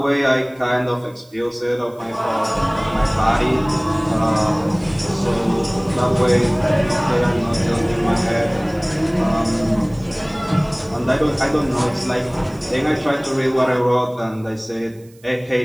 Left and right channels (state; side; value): noise; right; hiss, 29 dB below the sound